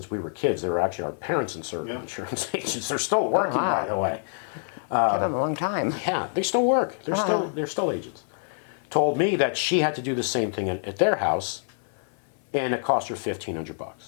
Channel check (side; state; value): right; silent; 57 dB below the other